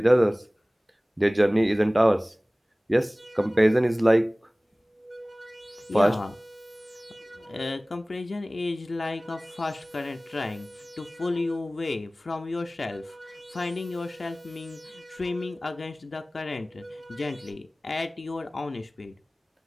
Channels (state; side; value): normal; both; correlation 0.98